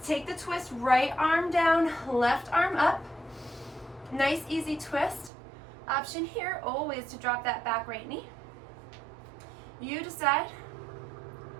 take the twist, right arm down, left arm up. Nice easy twist. Option here always to drop that back right knee. You decide.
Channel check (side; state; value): left; drops out; at 5.3 s